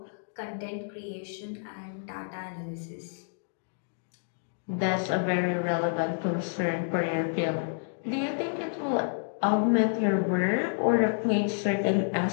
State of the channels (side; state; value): right; silent; digital silence